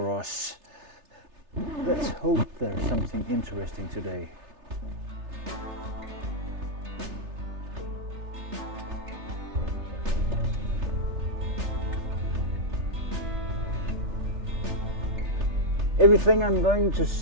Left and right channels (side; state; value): left; late; 3.3 ms